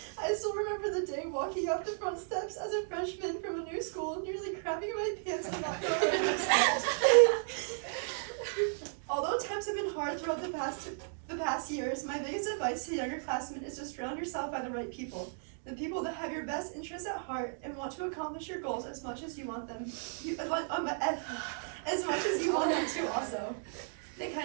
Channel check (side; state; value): left; silent; digital silence